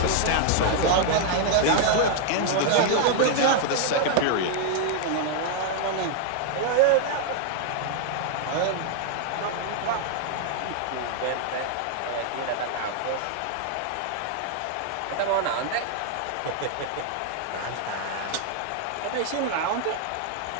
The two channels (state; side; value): different; both; correlation 0.00